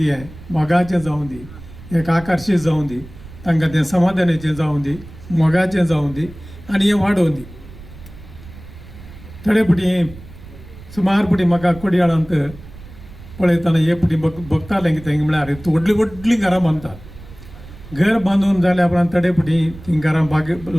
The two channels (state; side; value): noise; right; rumble, 17 dB below the sound